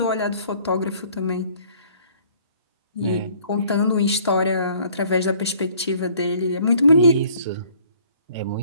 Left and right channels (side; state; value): both; inverted; correlation -0.57